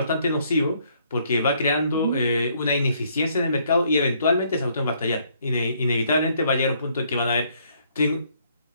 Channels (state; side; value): inverted; both; correlation -0.68